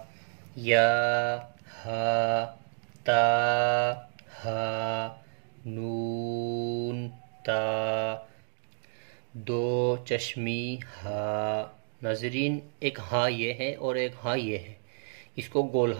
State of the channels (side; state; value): left; silent; digital silence